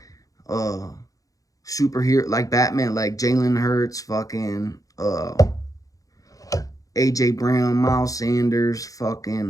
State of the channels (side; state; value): right; late; 0.17 ms